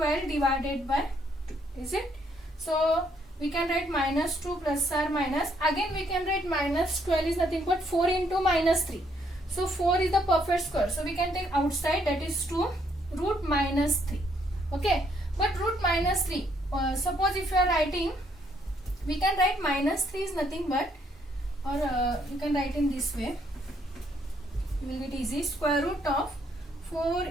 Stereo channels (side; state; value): both; normal; correlation 0.70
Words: divided by 2, is it? So we can write minus 2 plus or minus, again we can write minus 12 is nothing but 4 into minus 3. So 4 is the perfect square, so we can take outside, that is 2 root minus 3. Okay, but root minus 3, suppose if you are writing, we can write minus 3 is nothing but, or you can write in this way, it will get easy, square root of 4